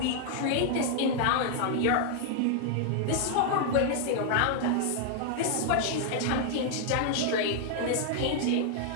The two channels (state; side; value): different; both; correlation 0.00